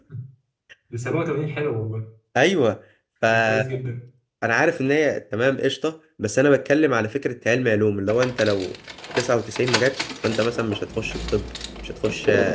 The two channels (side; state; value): both; identical; correlation 1.00